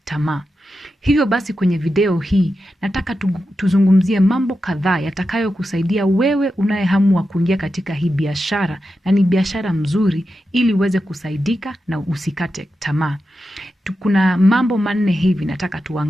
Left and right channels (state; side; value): normal; both; correlation 0.89